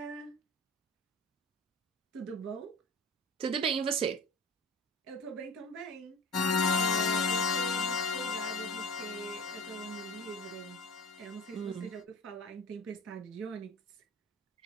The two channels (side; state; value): both; normal; correlation 0.39